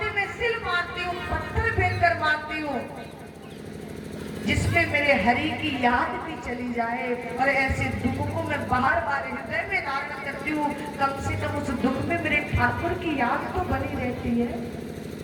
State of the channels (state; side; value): identical; both; correlation 1.00